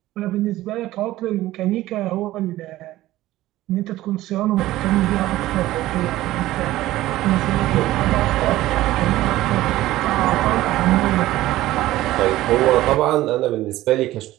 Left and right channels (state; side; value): quieter; left; 15.8 dB